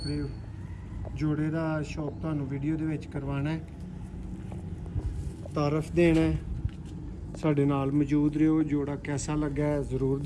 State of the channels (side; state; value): both; identical; correlation 1.00